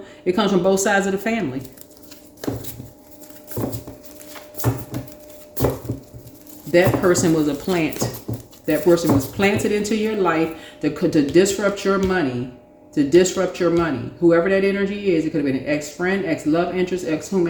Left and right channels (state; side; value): identical; both; correlation 1.00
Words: It comes from both sides of the family. That person was a plant. That person was planted into your life to disrupt your money. To disrupt your money. Whoever that energy is, it could have been an ex-friend, ex-love interest,